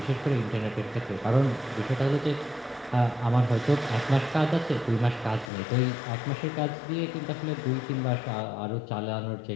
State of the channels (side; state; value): right; drops out; at 5.5 s